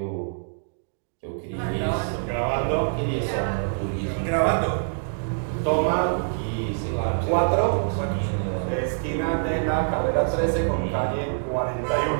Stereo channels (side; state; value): left; silent; digital silence